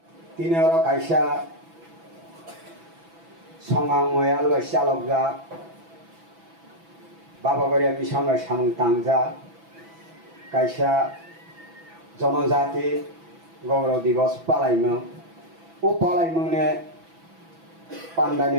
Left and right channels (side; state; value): left; late; 6.0 ms